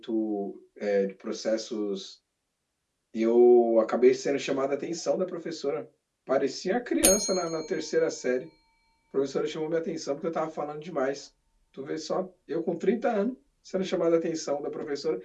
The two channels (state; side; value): identical; both; correlation 1.00